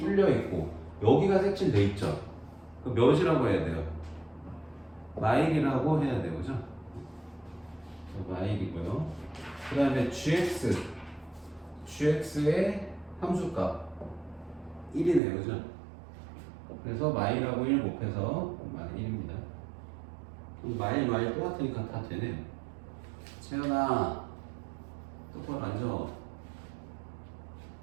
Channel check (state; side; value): drops out; left; at 15.2 s